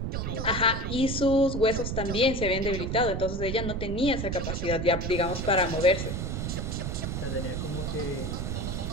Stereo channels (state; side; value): noise; right; rumble, 3 dB below the sound